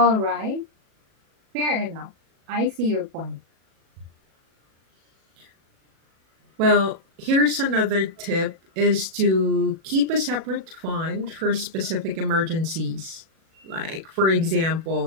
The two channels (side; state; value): left; late; 37 ms